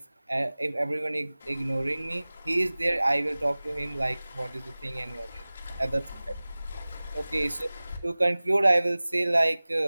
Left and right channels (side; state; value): both; inverted; correlation -0.99